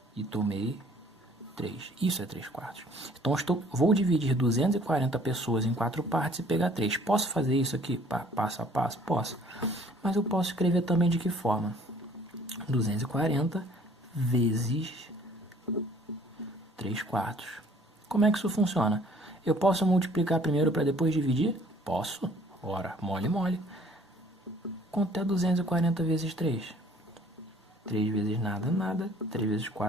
e tomei 3. Isso é 3/4. Então vou dividir 240 pessoas em 4 partes e pegar 3. Posso fazer isso aqui passo a passo? Posso. Mas eu posso escrever também de que forma? 240 vezes 3/4. Como é que isso funciona? Eu posso multiplicar primeiro para depois dividir? Posso. Ora, mole. Quanto é 240 vezes 3? 3 vezes nada. 3 vezes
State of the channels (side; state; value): both; normal; correlation 0.56